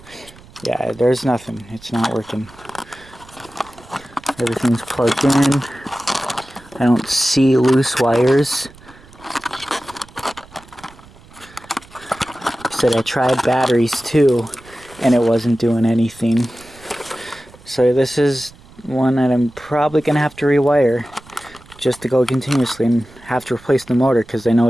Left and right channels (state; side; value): noise; right; rumble, 23 dB below the sound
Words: Yeah, there's nothing. It's not working. Everything's plugged in. I don't see loose wires. Said I tried batteries too, and it wasn't doing anything. So this is one that I'm probably gonna have to rewire just to go continuously and have to replace the motor because I